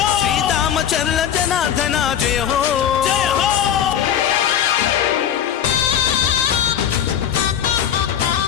శ్రీదామచర్ల జనార్దన జయ హో.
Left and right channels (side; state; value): right; quieter; 9.5 dB